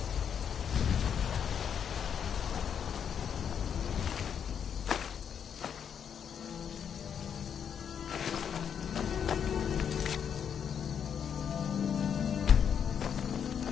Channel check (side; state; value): right; quieter; 7.9 dB